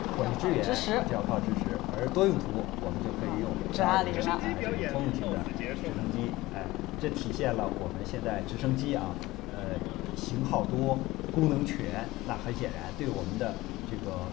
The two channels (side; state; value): right; quieter; 18.8 dB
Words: 或者支援就要靠直10，而多用途我们就可以用直20了。通用型的直升机，这体现了我们现在直升机啊，型号多、功能全，那很显然对我们的这个